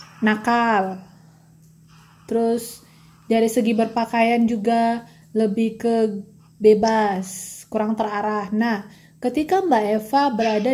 nakal, terus dari segi berpakaian juga lebih ke bebas, kurang terarah. Nah, ketika Mbak Eva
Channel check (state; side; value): identical; both; correlation 1.00